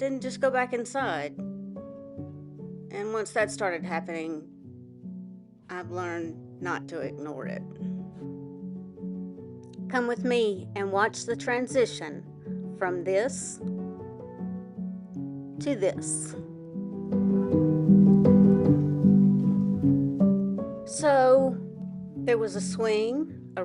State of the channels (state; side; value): identical; both; correlation 1.00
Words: just go back inside. And once that started happening, I've learned not to ignore it. Come with me and watch the transition from this to this. So, there was a swing, a